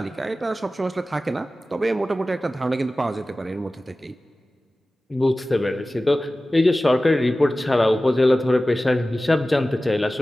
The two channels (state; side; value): normal; both; correlation 0.96